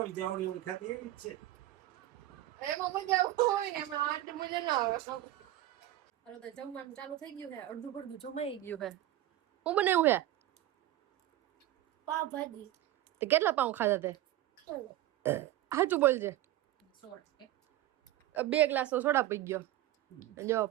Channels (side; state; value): left; quieter; 14.4 dB